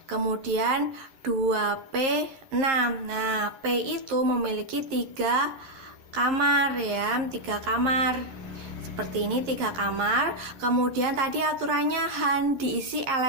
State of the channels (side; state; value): left; late; 11 ms